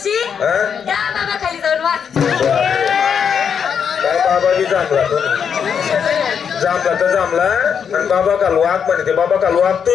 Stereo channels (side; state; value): right; quieter; 7.3 dB